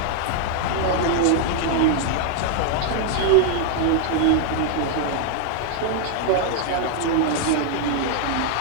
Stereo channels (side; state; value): both; different; correlation 0.00